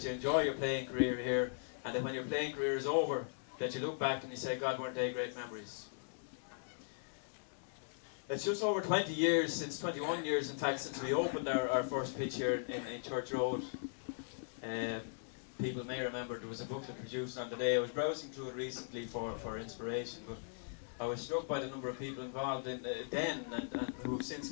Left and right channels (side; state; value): right; silent; digital silence